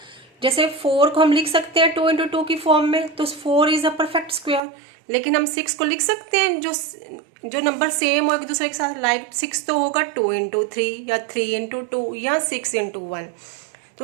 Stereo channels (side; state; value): left; drops out; at 4.6 s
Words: जैसे 4 को हम लिख सकते हैं 2 × 2 की फॉर्म में, तो 4 इज अ परफेक्ट स्क्वायर। लेकिन हम 6 को लिख सकते हैं जो नंबर सेम हो एक दूसरे के साथ। लाइक 6 तो होगा 2 × 3 या 3 × 2 या 6 × 1।